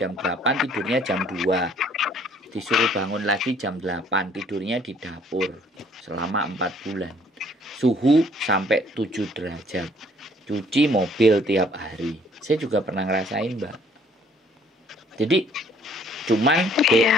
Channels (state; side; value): normal; both; correlation 0.61